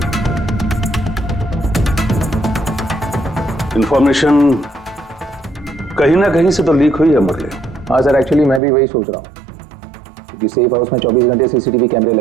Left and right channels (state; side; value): drops out; left; at 8.6 s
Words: इंफॉर्मेशन कहीं ना कहीं से तो लीक हुई है मुरली। हाँ सर, एक्चुअली मैं भी वही सोच रहा हूँ, क्योंकि सेफ हाउस में 24 घंटे सीसीटीवी कैमरे